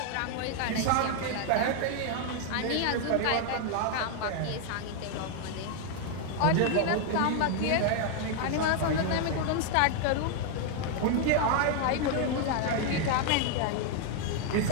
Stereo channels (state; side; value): different; both; correlation 0.00